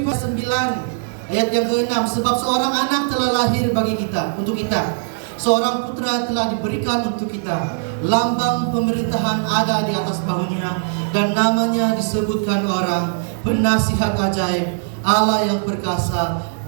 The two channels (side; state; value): left; silent; 66 dB below the other